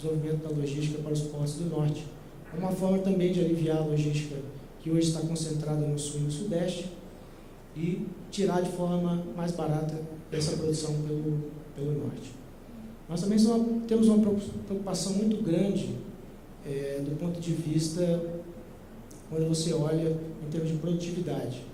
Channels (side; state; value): both; identical; correlation 1.00